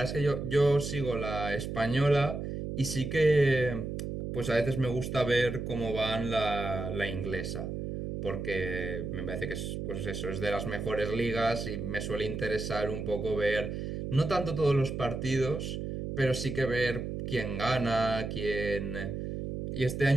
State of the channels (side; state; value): right; noise; hum, 5 dB below the sound